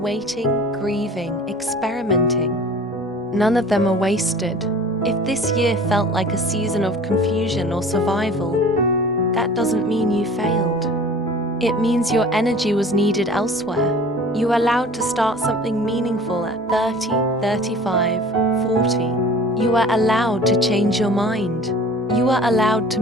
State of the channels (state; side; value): normal; both; correlation 0.44